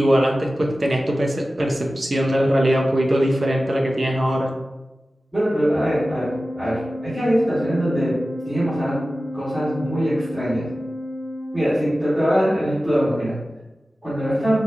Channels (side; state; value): both; normal; correlation 0.95